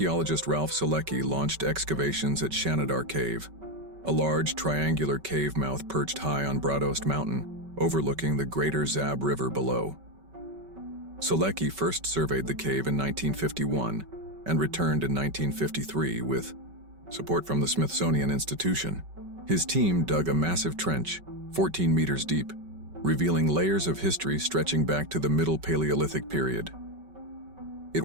Ralph Selecki launched excavations at Shannidar Cave, a large triangular cave mouth perched high on Broadost Mountain, overlooking the greater Zab River below. Selecki first surveyed the cave in 1951 and returned in 1953 with support from the Smithsonian Institution. His team dug a massive trench, 14 meters deep, revealing layers of history stretching back to the Middle Paleolithic period. It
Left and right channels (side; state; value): left; late; 5.3 ms